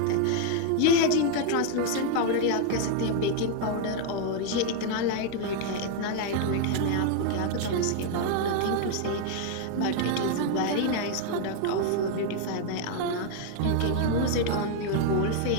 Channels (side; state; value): both; different; correlation 0.00